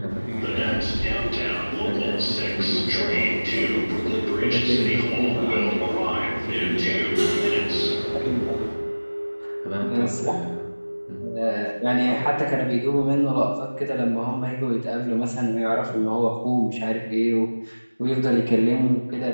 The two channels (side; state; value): both; inverted; correlation -1.00